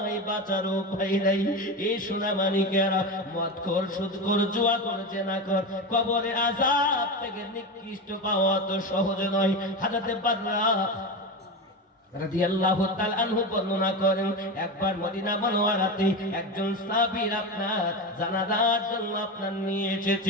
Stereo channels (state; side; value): normal; both; correlation 0.20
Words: বাঁচার উপায় নাই। এই সোনা মানিকেরা, মদখোর, সুদখোর, জুয়াখোর, জেনাখোর, কবরের আযাব থেকে নিকৃষ্ট পাওয়া তো সহজ নয়। হযরত বাররা রাদিয়াল্লাহু তাআলা আনহু বর্ণনা করেন, একবার মদিনা মুনাওয়ারাতে একজন সাহাবীর আপনার জানাজার জন্য আপনার নিয়ে